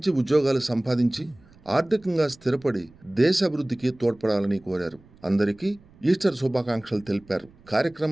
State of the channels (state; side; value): noise; right; rumble, 27 dB below the sound